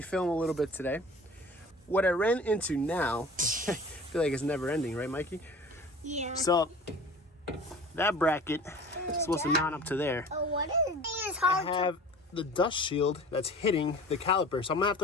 a little bit today. What I ran into now, I feel like it's never ending, right, Mikey? Yeah. So that bracket is supposed to mount up to there. Oh, what is this? Is I hard have the dust shield that's hitting the caliper, so I'm gonna have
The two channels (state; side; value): normal; both; correlation 0.42